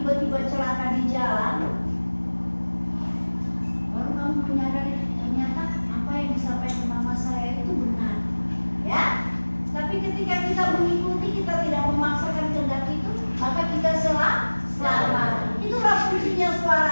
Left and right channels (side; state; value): both; inverted; correlation -1.00